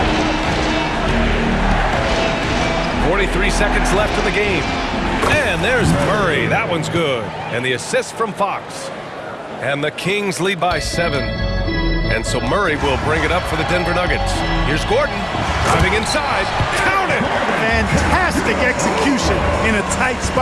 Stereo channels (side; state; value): both; identical; correlation 1.00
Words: 43 seconds left in the game. And there's Murray. That one's good. And the assist from Fox. And the Kings lead by 7. And so Murray will bring it up for the Denver Nuggets. Here's Gordon driving inside. Count it! Fantastic execution in a tight